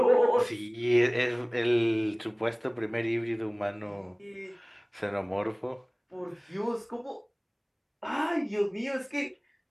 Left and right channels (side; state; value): both; identical; correlation 1.00